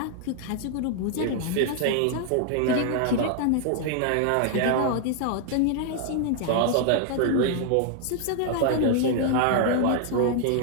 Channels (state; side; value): different; both; correlation 0.00